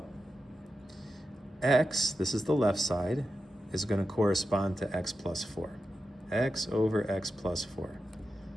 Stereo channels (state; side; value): normal; both; correlation 0.90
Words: x, this is the left side, is going to correspond to x plus 4. X over x plus 4.